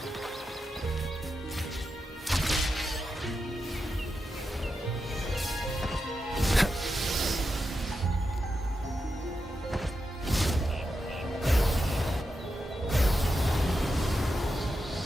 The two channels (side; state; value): both; normal; correlation 0.88